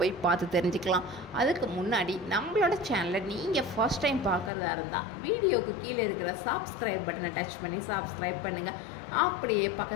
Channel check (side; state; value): right; drops out; at 4.5 s